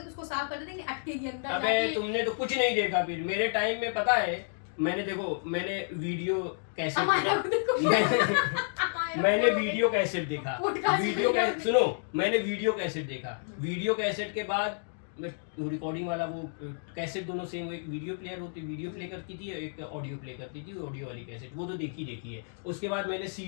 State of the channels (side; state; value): right; silent; digital silence